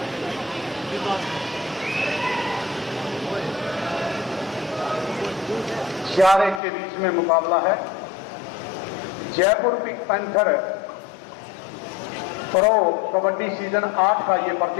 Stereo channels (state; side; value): drops out; right; at 6.6 s